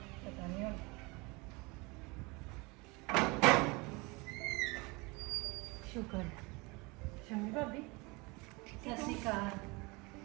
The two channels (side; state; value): left; quieter; 26.3 dB